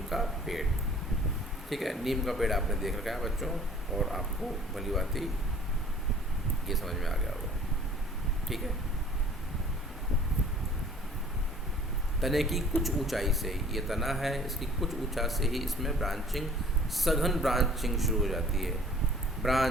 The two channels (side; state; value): both; normal; correlation 0.51